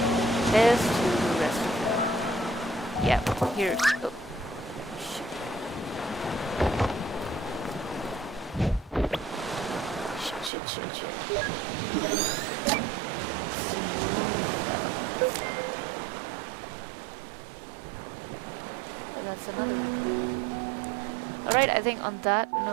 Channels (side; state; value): left; drops out; at 10.5 s